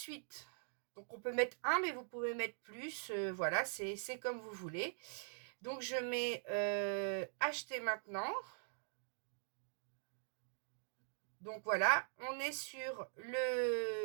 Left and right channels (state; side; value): silent; left; digital silence